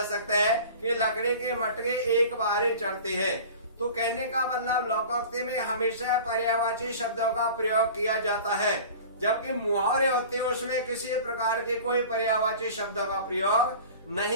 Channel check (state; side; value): inverted; both; correlation -0.40